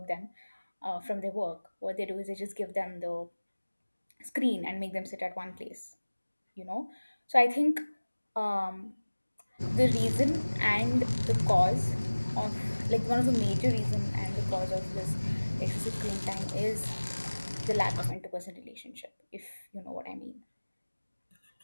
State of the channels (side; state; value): both; inverted; correlation -1.00